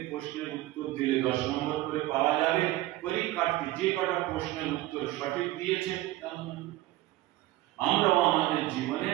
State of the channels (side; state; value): left; quieter; 16.7 dB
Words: প্রশ্নের উত্তর দিলে 10 নম্বর করে পাওয়া যাবে। পরীক্ষার্থী যে কটা প্রশ্নের উত্তর সঠিক দিয়েছে, আমরাও আমাদের জীবনে